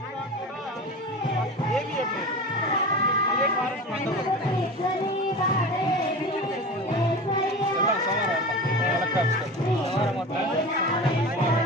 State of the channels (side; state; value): both; normal; correlation 0.31